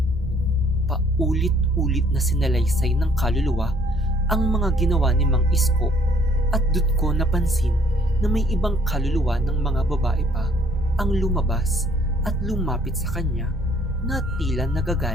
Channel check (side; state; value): both; normal; correlation 0.62